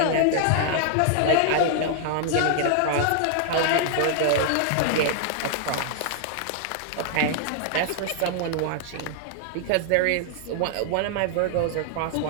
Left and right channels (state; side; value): different; both; correlation -0.01